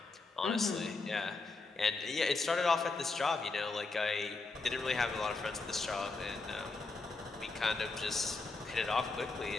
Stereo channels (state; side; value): quieter; right; 3.7 dB